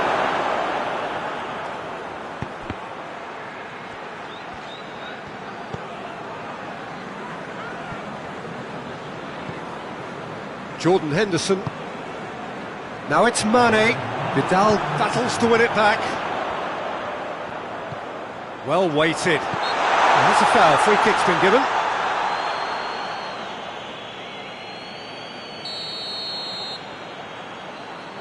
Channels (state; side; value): identical; both; correlation 1.00